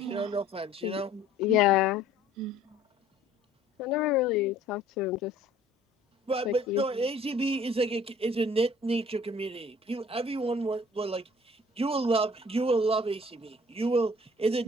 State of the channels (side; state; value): both; normal; correlation 0.53